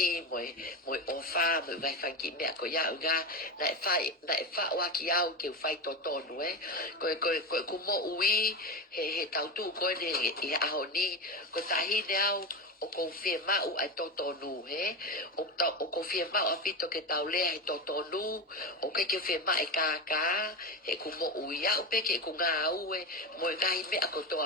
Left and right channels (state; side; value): normal; both; correlation 0.20